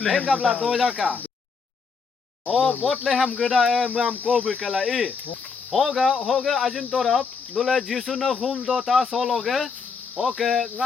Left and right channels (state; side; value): quieter; right; 5.2 dB